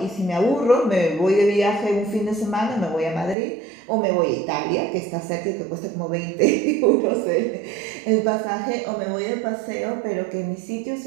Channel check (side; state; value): left; drops out; at 3.4 s